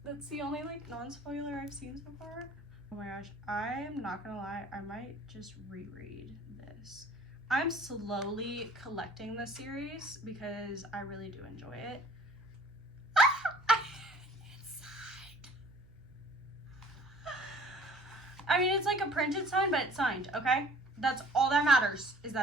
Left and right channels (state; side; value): noise; right; hum, 24 dB below the sound